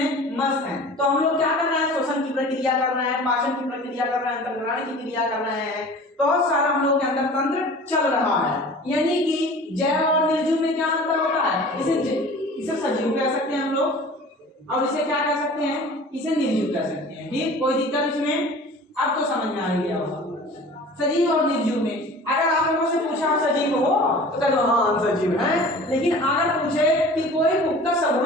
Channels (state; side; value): normal; both; correlation 0.42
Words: मस्त हैं। तो हम लोग क्या कर रहे हैं? श्वसन की प्रक्रिया कर रहे हैं, पाचन की प्रक्रिया कर रहे हैं, अंतर्ग्रहण की क्रिया कर रहे हैं, बहुत सारा हम लोग के अंदर तंत्र चल रहा है। यानी कि जैव और निर्जीव में क्या अंतर होता है? इसे सजीव कह सकते हैं हम लोग, और इसे क्या कह सकते हैं? इसे निर्जीव कह सकते हैं। ठीक, कोई दिक्कत इसमें? अब तो समझ में आ गया होगा। सजीव और निर्जीव में अगर आप लोगों से पूछा आप सजीव हो तो कह दो हाँ हम सजीव हैं, लेकिन अगर पूछे कि कोई पुख्ता